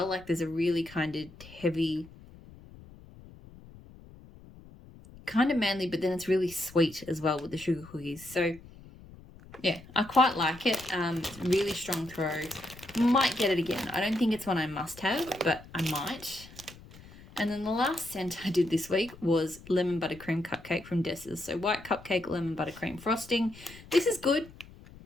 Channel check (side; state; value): left; noise; rumble, 20 dB below the sound